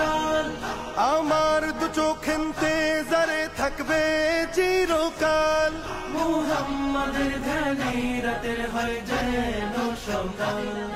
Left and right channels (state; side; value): identical; both; correlation 1.00